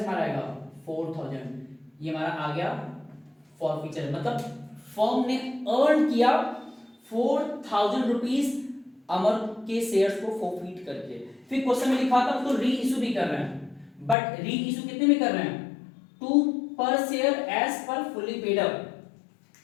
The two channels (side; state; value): right; drops out; at 14.2 s